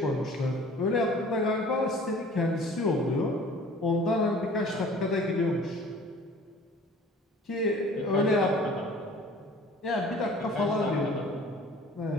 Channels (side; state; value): both; normal; correlation 0.47